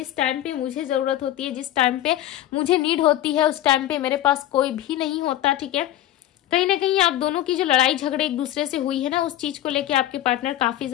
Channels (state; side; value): quieter; right; 13.3 dB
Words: टाइम पे मुझे जरूरत होती है, जिस टाइम पे मुझे नीड होती है, उस टाइम पे मेरे पास कोई भी नहीं होता, ठीक है। कहीं ना कहीं आप दोनों की जो लड़ाई झगड़े एक दूसरे से हुई है ना, उस चीज को लेके आपके पार्टनर काफी